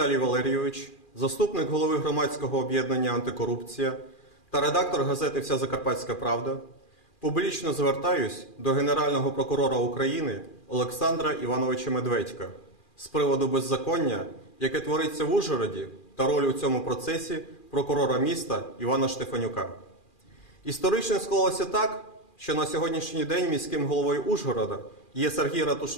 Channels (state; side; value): late; right; 2.4 ms